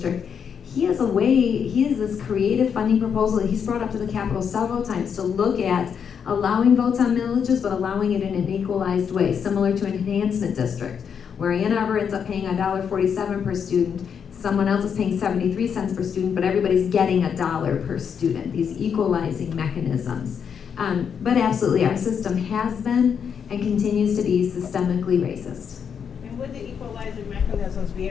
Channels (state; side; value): quieter; right; 7.2 dB